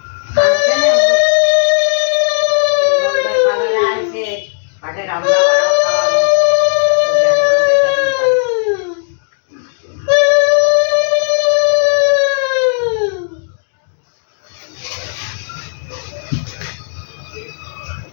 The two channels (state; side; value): silent; right; 67 dB below the other